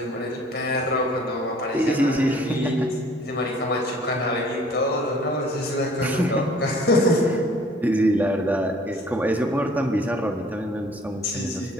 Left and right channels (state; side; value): normal; both; correlation 0.54